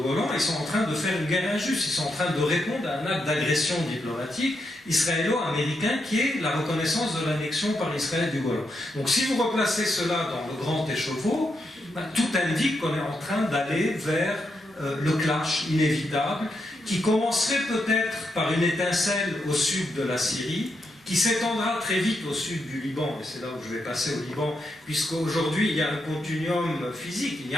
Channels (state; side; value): normal; both; correlation 0.82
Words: Golan, ils sont en train de faire une guerre injuste, ils sont en train de répondre à un acte d'agression diplomatique israélo-américain qui est la reconnaissance de l'annexion par Israël du Golan. Donc si vous replacez cela dans le grand écheveau, tout indique qu'on est en train d'aller vers le clash inévitable qui commencerait peut-être par une étincelle au sud de la Syrie, qui s'étendra très vite au sud du Liban, et c'est là où je vais passer au Liban, puisqu'aujourd'hui il y a un continuum physique, il n'y